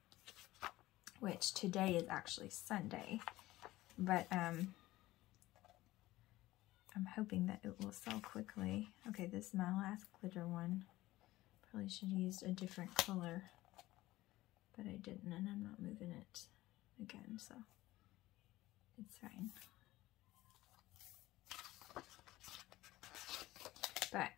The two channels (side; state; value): right; quieter; 17.3 dB